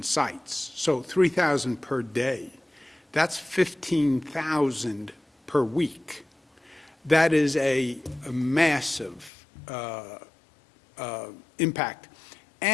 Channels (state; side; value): drops out; right; at 9.3 s